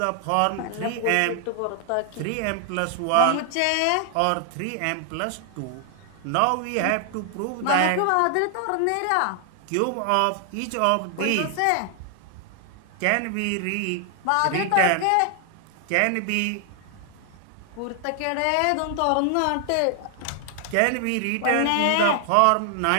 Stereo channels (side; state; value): both; different; correlation 0.00